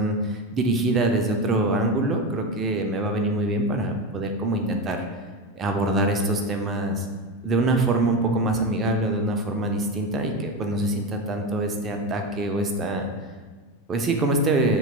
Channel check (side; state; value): both; normal; correlation 0.18